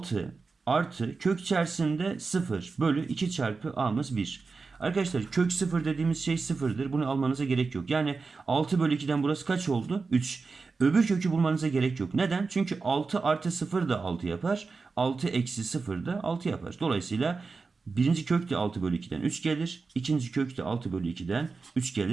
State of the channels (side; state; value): left; quieter; 4.4 dB